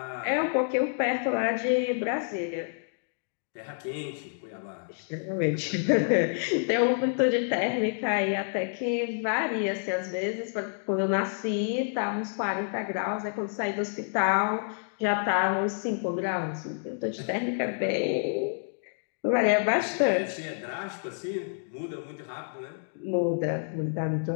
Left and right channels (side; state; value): right; silent; digital silence